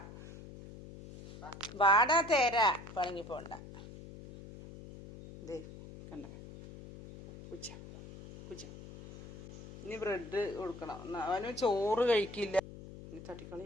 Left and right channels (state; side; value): noise; left; hum, 15 dB below the sound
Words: വാടാ തേര പണങ്ങി പോണ്ട. ദേ കണ്ട കുച്ച. ഇനി ബ്രെഡ് കൊടുക്കണം. അവന് ചോറ് കഴിക്കില്ല. ഇനി തട്ടിക്കളി.